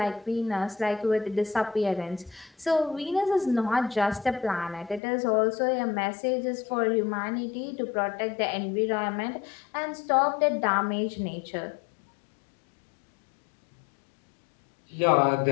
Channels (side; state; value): right; drops out; at 5.0 s